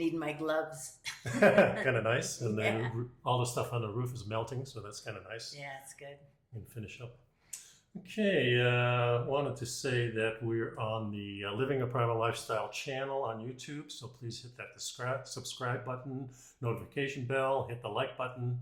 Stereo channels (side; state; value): both; identical; correlation 1.00